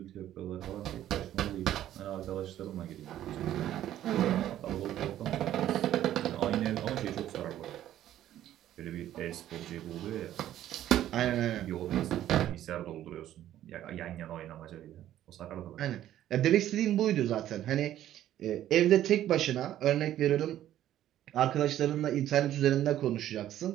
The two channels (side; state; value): left; quieter; 12.3 dB